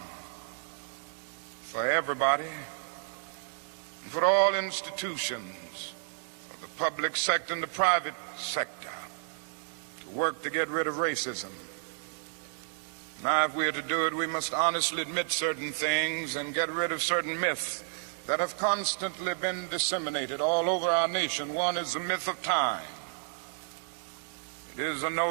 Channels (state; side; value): silent; left; digital silence